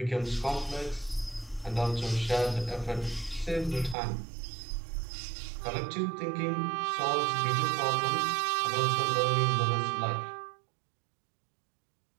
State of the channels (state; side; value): drops out; left; at 4.0 s